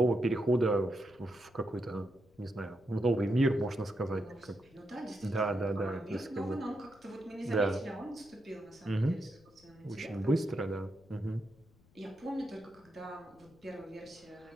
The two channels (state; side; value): noise; left; rumble, 28 dB below the sound